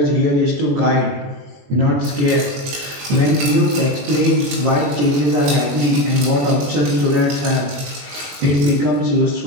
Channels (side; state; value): left; late; 21 ms